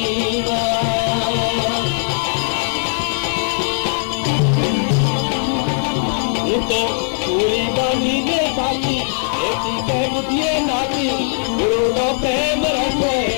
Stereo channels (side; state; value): right; silent; digital silence